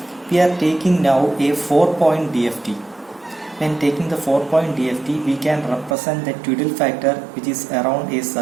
we are taking now a 4-point DFT. When taking the 4-point DFT, we can represent the Twiddle factor, which is around a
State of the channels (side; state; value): left; drops out; at 6.0 s